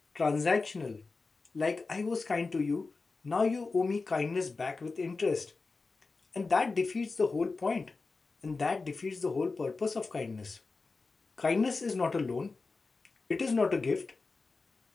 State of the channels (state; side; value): quieter; right; 4.0 dB